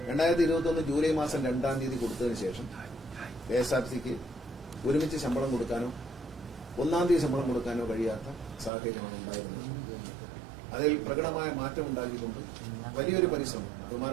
2021 ജൂലൈ മാസം 2-ാം തീയതി കൊടുത്തതിന് ശേഷം KSRTCക്ക് ഒരുമിച്ച് ശമ്പളം കൊടുക്കാനോ 1-ാം തീയതി ശമ്പളം കൊടുക്കാനോ കഴിയാത്ത സാഹചര്യമാണ് ഉണ്ടായിരുന്നത്. അതിൽ പ്രകടമായ മാറ്റം ഉണ്ടാക്കിക്കൊണ്ട് വലിയൊരു പരിശ്രമം,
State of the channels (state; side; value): drops out; left; at 8.7 s